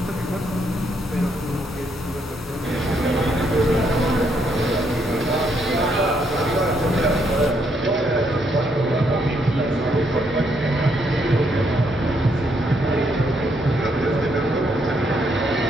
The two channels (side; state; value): both; normal; correlation 0.74